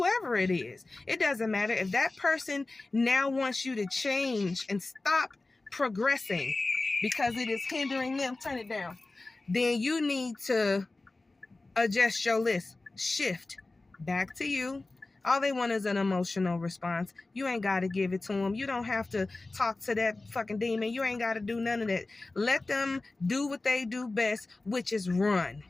is. It doesn't matter. If that person now wants you to change and stop progressing because it is hindering them, turn it down, then you need to adjust your list. Shift back to you. All they want is an emotional response. You ain't got to give it to them. You don't have to talk to that fucking demon. You ain't got to do none of that. Let them do what they do best, which is run.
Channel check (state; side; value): quieter; right; 3.2 dB